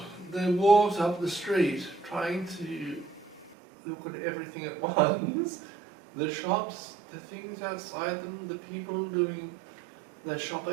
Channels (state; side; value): drops out; left; at 3.6 s